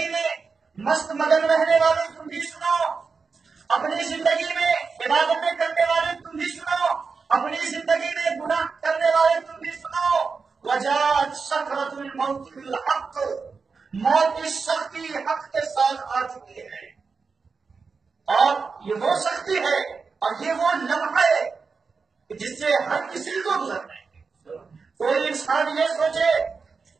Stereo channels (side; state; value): left; quieter; 4.9 dB